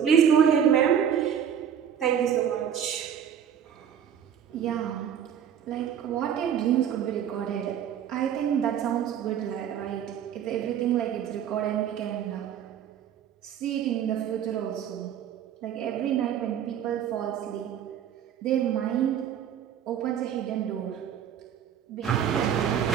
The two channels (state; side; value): quieter; left; 9.0 dB